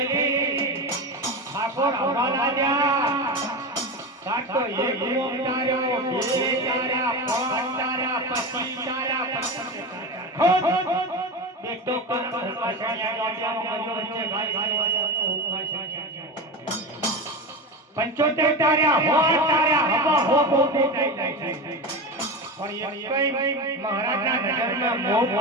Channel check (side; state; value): both; normal; correlation 0.23